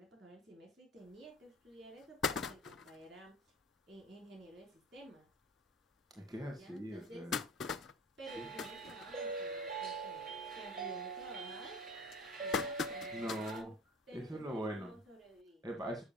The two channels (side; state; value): both; normal; correlation 0.39